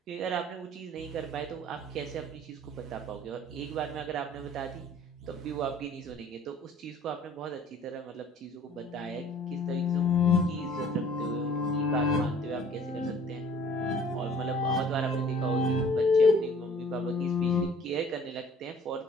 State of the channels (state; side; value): normal; both; correlation 0.53